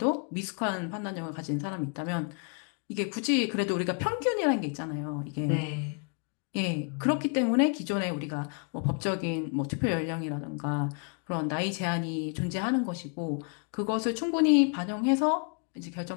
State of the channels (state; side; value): quieter; right; 39.2 dB